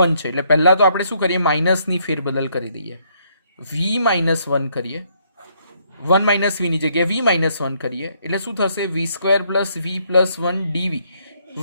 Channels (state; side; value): inverted; both; correlation -0.70